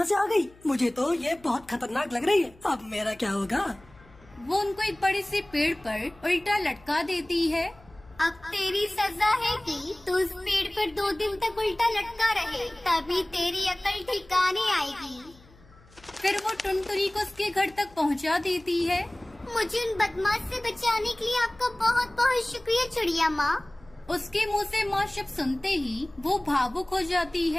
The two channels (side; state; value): left; noise; hum, 26 dB below the sound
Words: से आ गई? मुझे तो ये बहुत खतरनाक लग रही है। अब मेरा क्या होगा? वो उनको एक बड़े से पेड़ पर उल्टा लटका देती है। अब तेरी सजा है कि तू उस पेड़ पर 2 दिन तक उल्टा लटका रहे, तभी तेरी अकल ठिकाने आएगी। फिर वो टुनटुनी को उसके घर तक पहुंचा देती है। मुझे उन बदमाश से बचाने के लिए आपका बहुत बहुत शुक्रिया चिड़िया माँ। उसके मुंह से माँ शब्द सुनते ही वो भावुक हो जाती